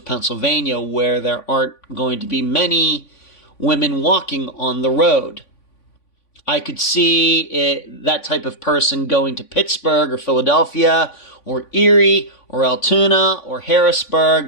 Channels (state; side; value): late; right; 3.5 ms